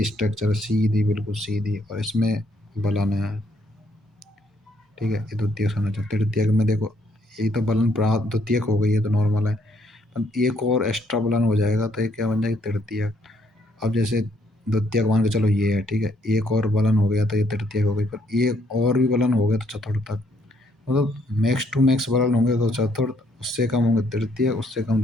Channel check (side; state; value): both; normal; correlation 0.69